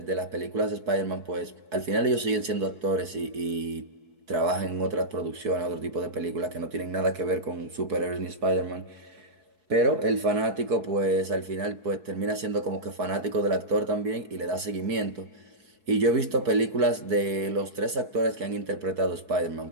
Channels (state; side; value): late; left; 4.7 ms